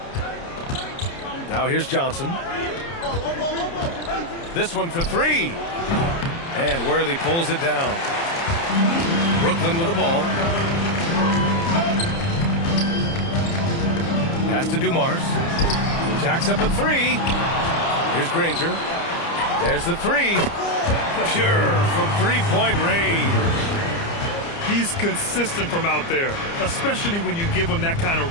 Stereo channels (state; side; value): late; right; 30 ms